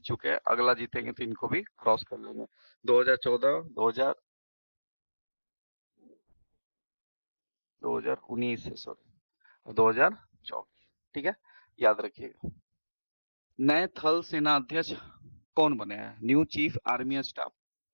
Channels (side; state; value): both; inverted; correlation -1.00